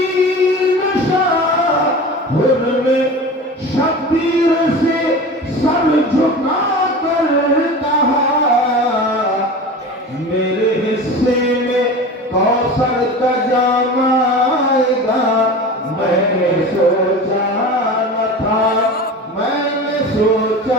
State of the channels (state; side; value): normal; both; correlation 0.33